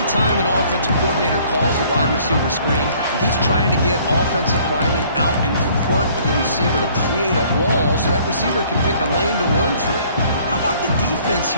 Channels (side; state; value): both; inverted; correlation -0.58